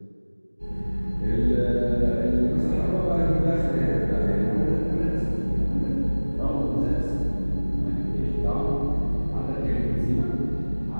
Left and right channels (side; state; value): both; inverted; correlation -1.00